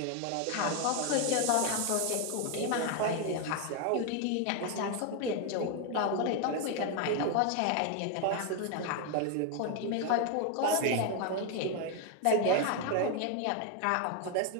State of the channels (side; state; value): both; different; correlation 0.01